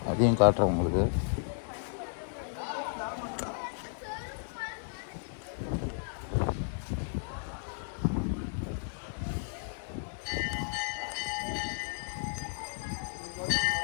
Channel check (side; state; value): right; silent; digital silence